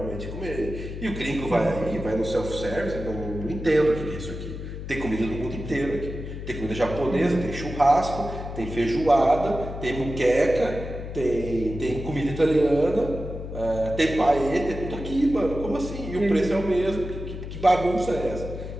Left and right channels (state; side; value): noise; left; hum, 8 dB below the sound